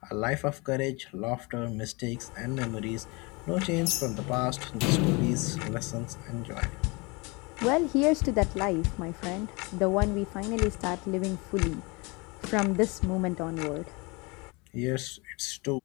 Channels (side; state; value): right; quieter; 27.6 dB